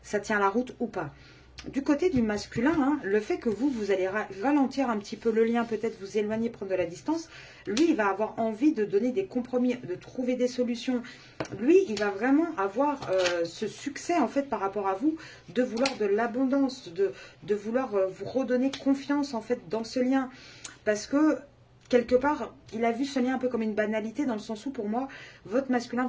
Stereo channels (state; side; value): identical; both; correlation 1.00